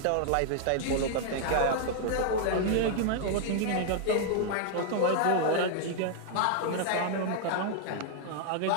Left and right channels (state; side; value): different; both; correlation -0.01